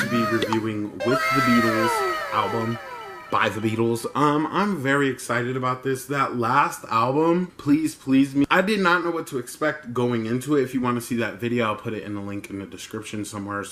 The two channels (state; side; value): identical; both; correlation 1.00